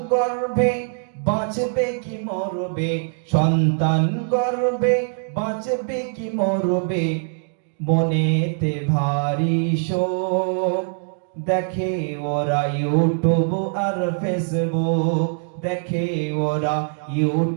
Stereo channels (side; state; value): left; silent; digital silence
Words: গর্ভে বাঁচবে কি মরবে, সন্তান গর্ভে বাঁচবে কি মরবে, মনেতে ভারী শোক, দেখে ওরা ইউটিউব আর ফেসবুক, দেখে ওরা